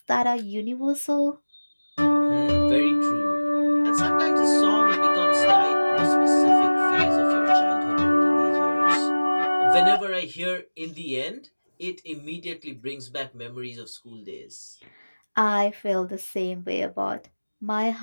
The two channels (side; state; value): both; inverted; correlation -1.00